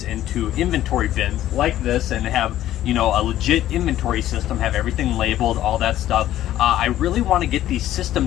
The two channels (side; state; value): right; quieter; 13.1 dB